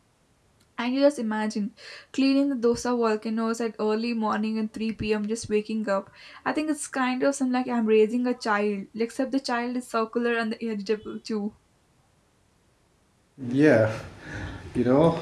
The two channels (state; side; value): identical; both; correlation 1.00